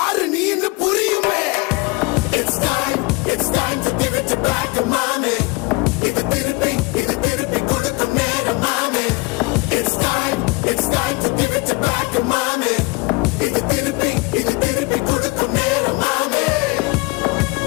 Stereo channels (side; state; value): right; quieter; 25.5 dB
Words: நீன்னு புரியுமே. It's time to give it back to mommy. இது திருப்பி கொடுக்கும் நேரம் மாமே. It's time to give it back to mommy. இது திருப்பி கொடுக்கும் நேரம் மாமே.